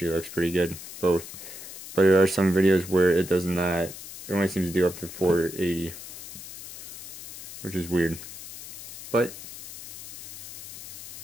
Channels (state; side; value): noise; left; hiss, 12 dB below the sound